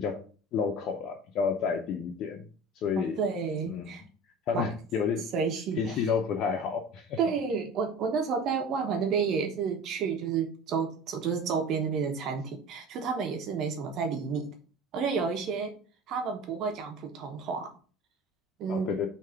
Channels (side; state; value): both; normal; correlation 0.37